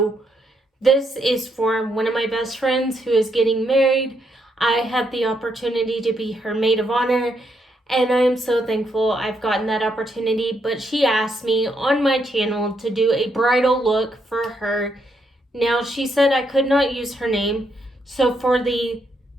This is for one of my best friends who is getting married. I had the opportunity to be her maid of honor, and I am so thankful I've gotten that opportunity, but she asked me on my channel to do a bridal look for her. Now, she said I could not use her name, so for the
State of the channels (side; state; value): both; normal; correlation 0.77